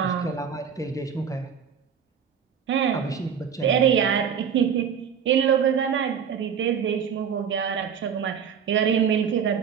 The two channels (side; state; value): left; quieter; 7.6 dB